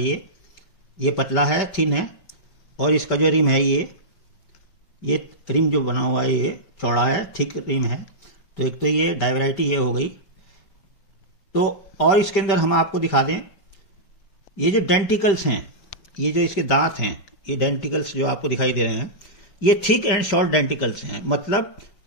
ये पतला है, थिन है। और इसका जो रिम है ये रिम जो बना हुआ है ये चौड़ा है, थिक रिम है। तो एक तो ये डाई वैरायटी ये हो गई। तो और इसके अंदर हम आपको दिखा दें, ये जो डेंटिकल्स हैं, ये जो इसके दांत हैं, ये डेंटिकल्स जो आपको दिखाई दे रहे हैं, ये थिक एंड शॉर्ट डेंटिकल्स हैं, मतलब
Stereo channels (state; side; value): late; right; 5.1 ms